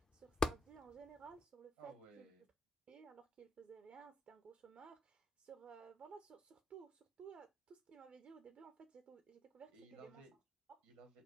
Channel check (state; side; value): normal; both; correlation 0.83